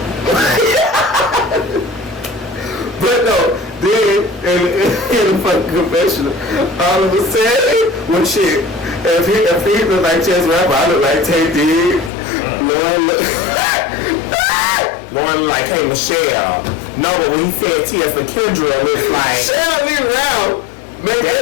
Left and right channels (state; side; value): drops out; right; at 12.1 s